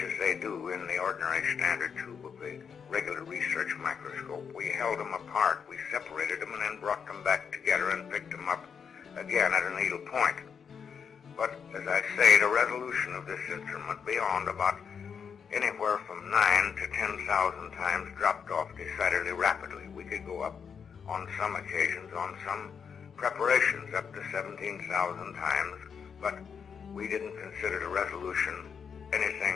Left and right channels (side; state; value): right; quieter; 6.7 dB